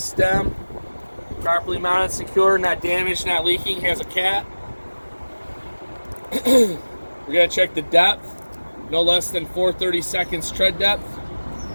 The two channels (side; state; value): both; inverted; correlation -1.00